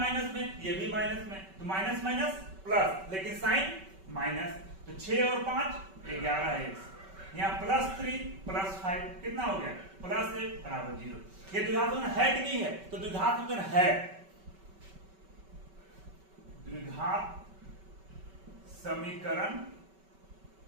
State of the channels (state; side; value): late; left; 5.2 ms